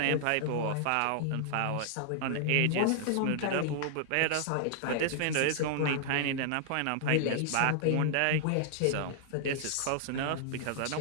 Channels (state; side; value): different; both; correlation -0.01